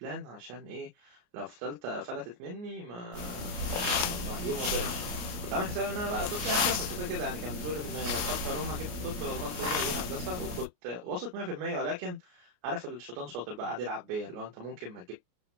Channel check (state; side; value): late; left; 33 ms